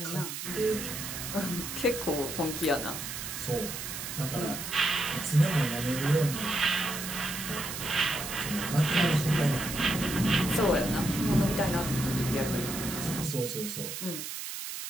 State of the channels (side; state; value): right; noise; hiss, 6 dB below the sound